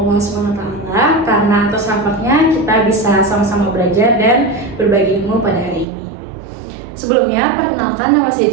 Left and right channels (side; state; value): left; drops out; at 5.9 s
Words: SWT karena atas rahmatnya kita bisa sama-sama belajar dan berbagi ilmu pada hari ini. Sebelumnya, perkenalkan nama saya